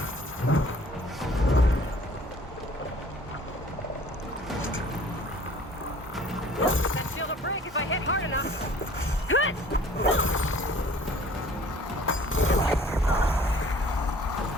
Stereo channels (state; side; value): normal; both; correlation 0.51